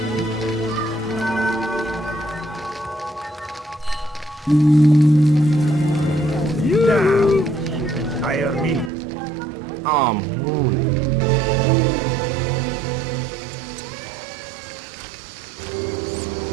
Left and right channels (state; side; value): drops out; left; at 8.9 s